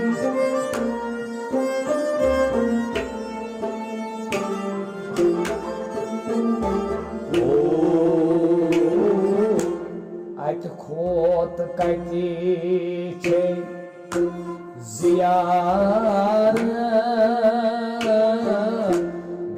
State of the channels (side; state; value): both; identical; correlation 1.00